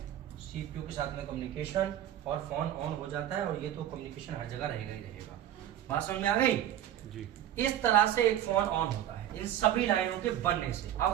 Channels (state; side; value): quieter; left; 11.6 dB